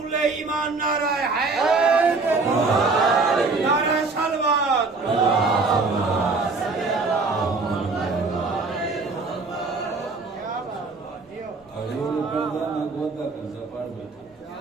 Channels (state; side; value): quieter; left; 3.9 dB